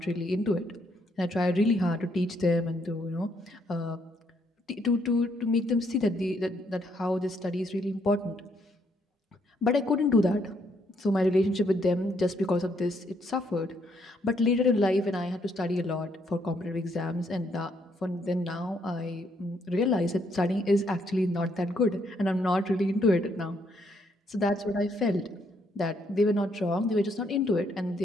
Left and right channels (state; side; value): normal; both; correlation 0.72